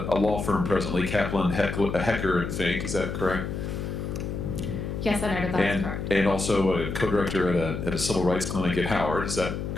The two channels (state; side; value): noise; left; hum, 4 dB below the sound